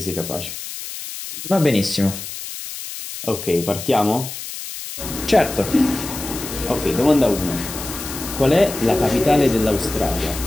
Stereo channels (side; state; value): left; noise; hiss, 9 dB below the sound